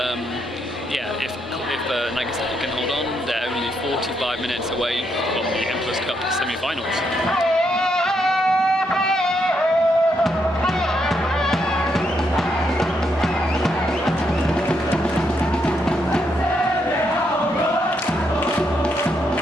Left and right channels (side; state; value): both; normal; correlation 0.78